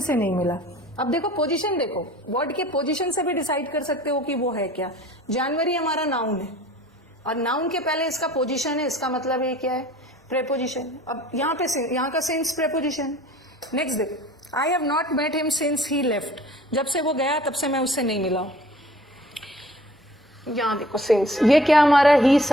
से नहीं मिला। अब देखो पोजीशन, देखो वर्ड के पोजीशन से भी डिसाइड कर सकते हो कि वो है क्या। जनवरी हमारा नाउन है, और नाउन के पहले इसका पोजीशन है, इसका मतलब ये क्या है? प्रेपोजिशन। अब यहाँ पे यहाँ का सिंस प्रेपोजिशन। नेक्स्ट देखो, I have not met him since he left. जब से वो गया तब से मैं उससे नहीं मिला। यहाँ देखो सिंस, ये क्या हमारा? ही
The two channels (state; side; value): normal; both; correlation 0.50